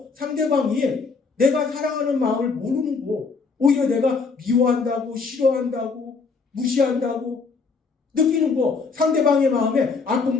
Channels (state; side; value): quieter; right; 4.7 dB